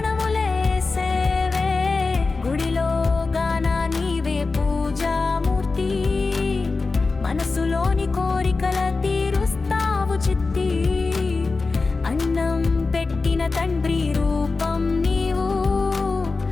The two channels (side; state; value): right; quieter; 3.9 dB